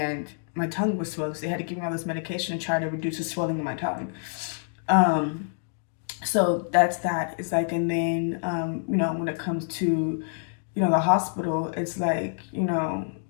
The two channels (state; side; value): silent; right; digital silence